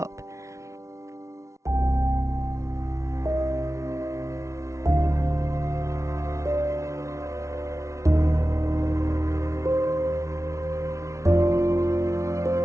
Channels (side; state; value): left; late; 0.14 ms